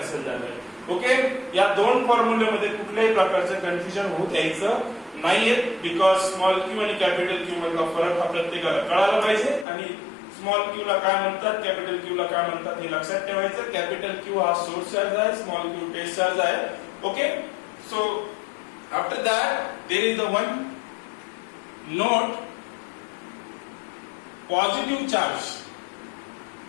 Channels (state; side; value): drops out; right; at 9.7 s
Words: झालाय. ओके, या दोन फॉर्म्युल्यामध्ये कुठल्याही प्रकारचं कन्फ्युजन होत यायचं नाहीये बिकॉज स्मॉल q आणि कॅपिटल Q मधला फरक हा प्रत्येकाला कळायला पाहिजे आणि स्मॉल q ला काय म्हणतात कॅपिटल Q ला काय म्हणतात हे लक्षात ठेवायचं. कॅपिटल Q हा सोर्स चार्ज आहे, स्मॉल q टेस्ट चार्ज आहे. Okay, so after that there is the one note positive charge